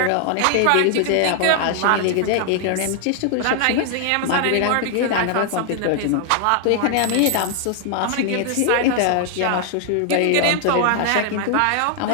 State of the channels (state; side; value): different; both; correlation 0.00